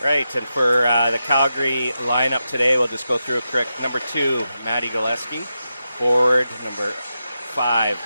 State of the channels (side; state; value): both; inverted; correlation -0.89